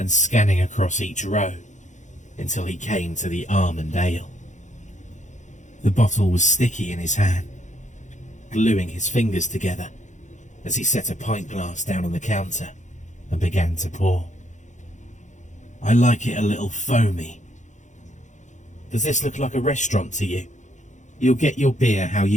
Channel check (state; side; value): late; right; 0.35 ms